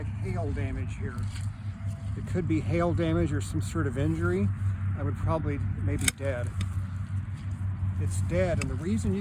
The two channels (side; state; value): both; identical; correlation 1.00